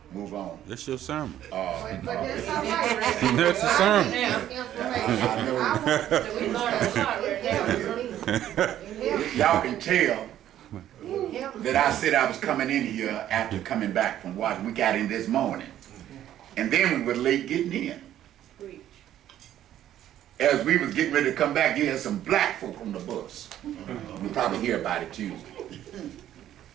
move on. That's your sermon. But that's all right. That's the sermon. I know. So we learned a lot right now. Y'all can tell that I said I was coming in here after coming back from Washington. We got in this morning. And then we were late getting in. As we was getting ready to come back, you had some black folk on the bus. You'll probably hear about it Tuesday.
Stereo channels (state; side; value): quieter; left; 11.8 dB